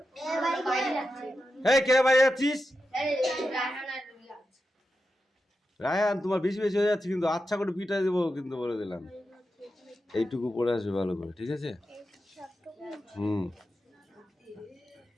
এই কে বাইরে যাচ্ছিস? রায়হান তোমার বেশি বেশি হয়ে যাচ্ছে কিন্তু, আচ্ছা করে পিটাই দেবো কিন্তু, বলে দিলাম। এইটুকু পড়ে আসবে ভালো করে, ঠিক আছে?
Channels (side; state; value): both; normal; correlation 0.89